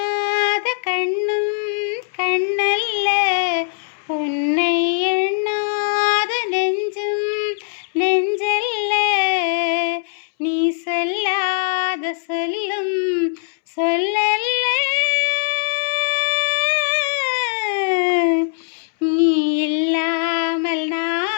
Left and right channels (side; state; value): right; silent; 66 dB below the other